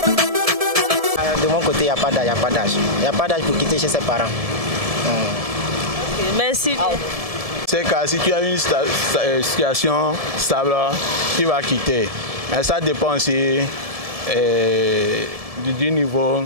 De mon côté, il n'y a pas d'âge. Il n'y a pas d'âge pour quitter chez ses parents. Okay, merci. C'est que si tu as une situation stable, tu vas quitter. Mais ça dépend aussi du niveau,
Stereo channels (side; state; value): left; late; 1.7 ms